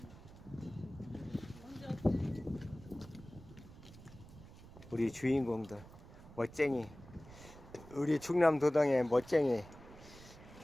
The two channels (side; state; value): right; noise; rumble, 18 dB below the sound